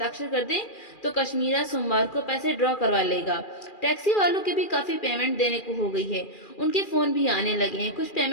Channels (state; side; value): late; right; 2.4 ms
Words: कर दें तो कश्मीरा सोमवार को पैसे ड्रॉ करवा लेगा। टैक्सी वालों की भी काफी पेमेंट देने को हो गई है, उनके फोन भी आने लगे हैं, कुछ